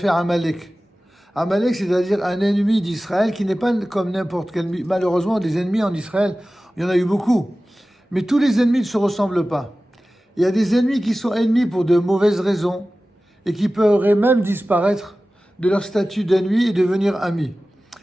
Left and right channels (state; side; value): normal; both; correlation 0.96